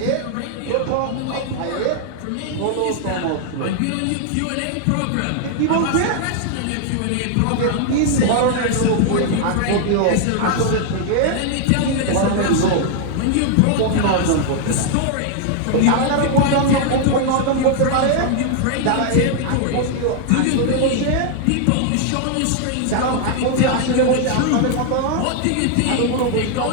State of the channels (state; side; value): different; both; correlation 0.00